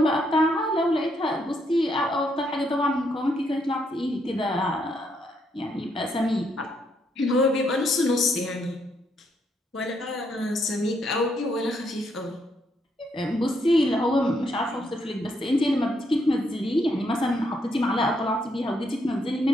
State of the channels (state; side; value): normal; both; correlation 0.75